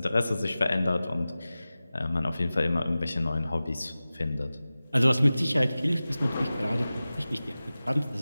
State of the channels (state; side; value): inverted; both; correlation -0.96